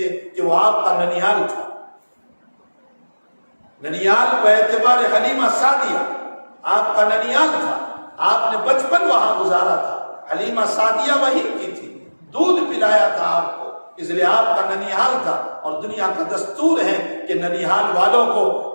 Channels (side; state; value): both; inverted; correlation -1.00